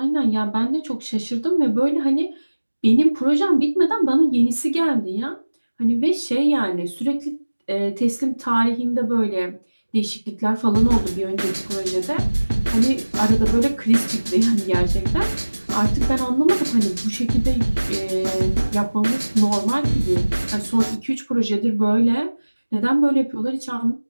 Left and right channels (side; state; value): both; inverted; correlation -1.00